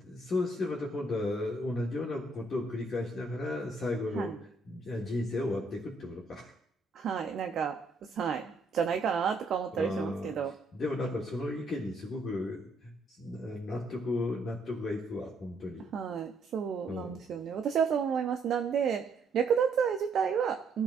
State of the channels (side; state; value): left; quieter; 3.0 dB